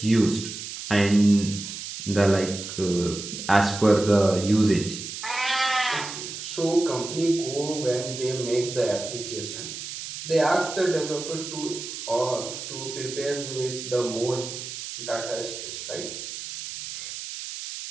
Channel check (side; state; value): right; noise; hiss, 8 dB below the sound